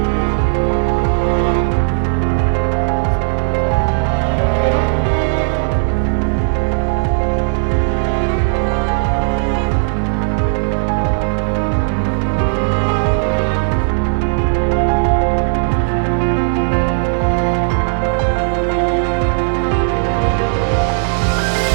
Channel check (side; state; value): left; silent; digital silence